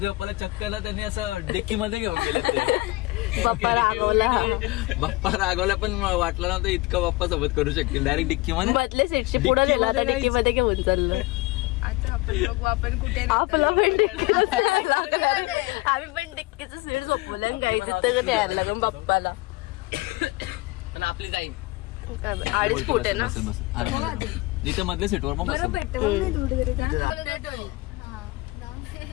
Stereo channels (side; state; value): right; quieter; 22.0 dB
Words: बाप्पाला चक्कला त्यांनी असं डिक्की मध्ये घेऊन गेले ते. बाप्पा रागवला पण वाटलं नव्हतं इतकं बाप्पा सोबत करू शकतील. डायरेक्ट डिक्की मध्ये बदले सीटशी पुढे गेला तर डिक्की मध्ये घेऊन चाललं. आपण कुठे आपला पण डिक्की आम्ही पण डिक्कीचं सीट झोपवलं गायचं तर द्यायला लागून बाप्पाला. आपली जाईल 2.5 फूट आहे ना. आरामात इथे मधल्या सीटवर मग बसेल.